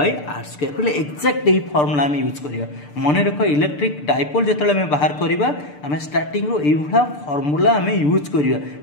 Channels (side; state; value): right; late; 6.8 ms